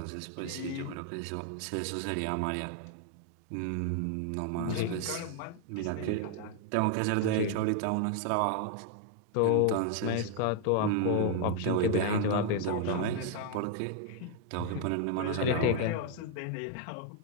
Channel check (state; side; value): different; both; correlation 0.00